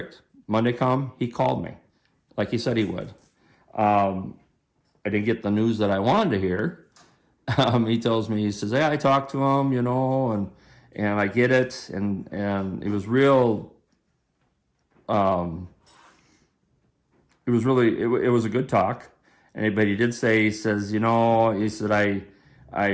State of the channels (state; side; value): identical; both; correlation 1.00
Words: Monday come, he called me, like he said he would. I didn't get the news that I wanted to hear. He tells me, he says, "Hey, I talked to him, and I get it," and it was real. It was a good talk. But he did say, he says, he said,